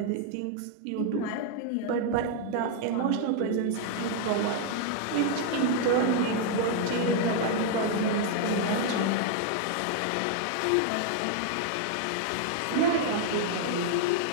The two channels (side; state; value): both; different; correlation 0.00